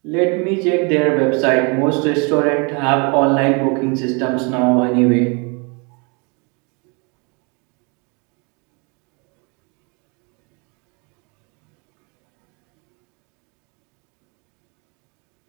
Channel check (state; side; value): quieter; left; 32.7 dB